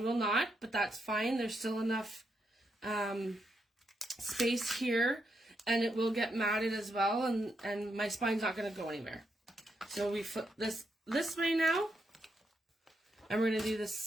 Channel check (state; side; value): normal; both; correlation 0.81